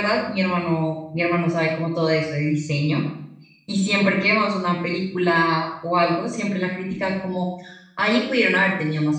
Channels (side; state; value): both; identical; correlation 1.00